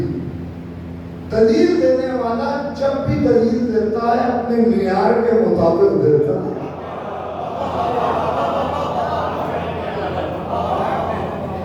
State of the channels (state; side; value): identical; both; correlation 1.00